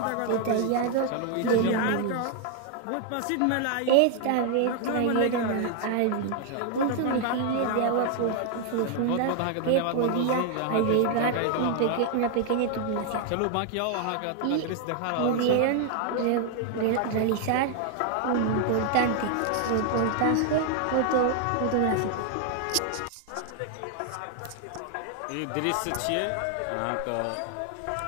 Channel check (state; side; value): different; both; correlation 0.00